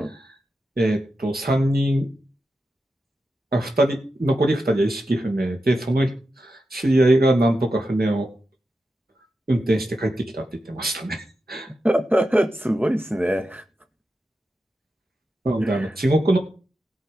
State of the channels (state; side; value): normal; both; correlation 0.89